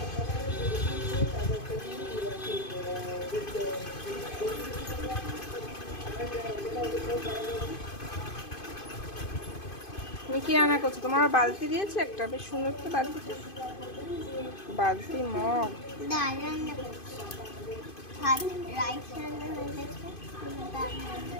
তুমি কি রান্না করছো? তোমার বালতি দিয়েছে একটা, বেশ সুন্দর তো বালতি। বালতি মগ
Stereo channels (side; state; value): right; late; 2.5 ms